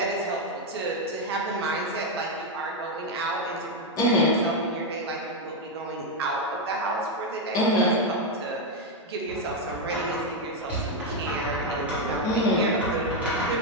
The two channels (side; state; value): both; normal; correlation 0.03